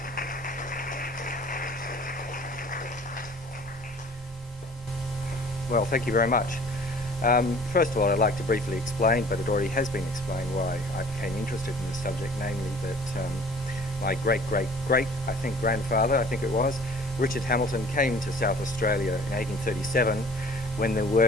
Well, thank you very much. First of all, I'd like to briefly explain, but it already has been explained, why I became interested in this subject, namely that my great-great-great, grandfather, Richard Hamilton, came to South Australia in 1837 when there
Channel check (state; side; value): normal; both; correlation 0.50